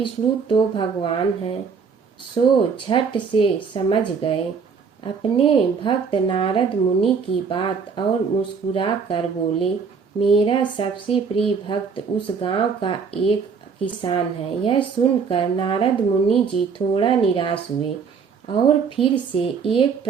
तो भगवान हैं, सो झट से समझ गए अपने भक्त नारद मुनि की बात और मुस्कुरा कर बोले, मेरा सबसे प्रिय भक्त उस गांव का एक किसान है। यह सुनकर नारद मुनि जी थोड़ा निराश हुए और फिर से एक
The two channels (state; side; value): quieter; left; 5.8 dB